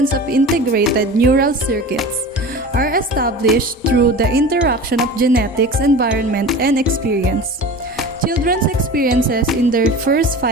of integrated neural circuits are established through the interaction of genetics, environment, and experience. Children's experiences in their first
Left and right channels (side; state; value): both; normal; correlation 0.35